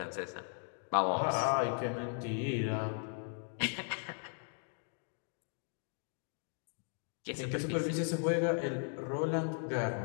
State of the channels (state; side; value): silent; right; 53 dB below the other